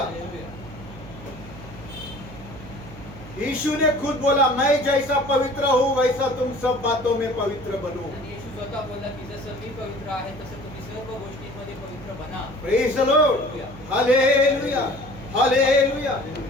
हालेलुया. यीशु ने खुद बोला, मैं जैसा पवित्र हूँ वैसा तुम सब बातों में पवित्र बनो. आणि येशू स्वतः बोलला की जसं मी पवित्र आहे तसं तुम्ही सर्व गोष्टींमध्ये पवित्र बना. Praise the Lord. Hallelujah. Hallelujah.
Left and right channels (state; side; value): noise; right; hum, 15 dB below the sound